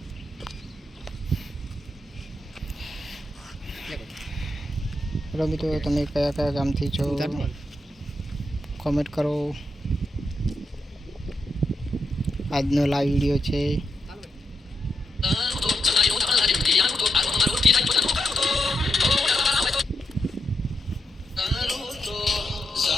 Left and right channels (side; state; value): both; normal; correlation 0.84